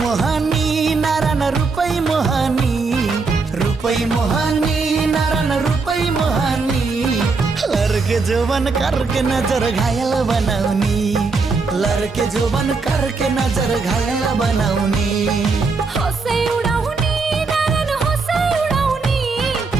नारायण रुपै मोहनी रुख रुपई मोहानी नारायण रुपई मोहानी लड़के जोबन करके नजर घायल बनाउनी लड़के जोबन करके नजर घायल बनाउनी हँसै उडाउने नारायण हँसै उडाउने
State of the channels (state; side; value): quieter; left; 4.3 dB